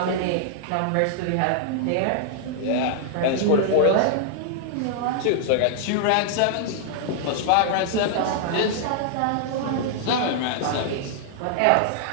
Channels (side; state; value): both; different; correlation -0.01